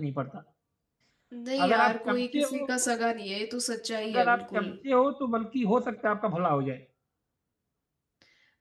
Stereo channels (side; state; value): both; identical; correlation 1.00